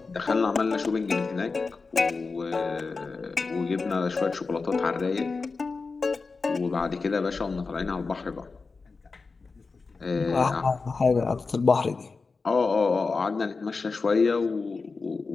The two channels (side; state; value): right; quieter; 4.3 dB